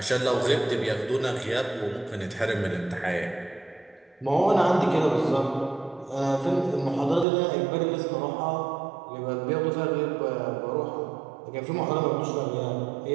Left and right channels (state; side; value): drops out; left; at 7.2 s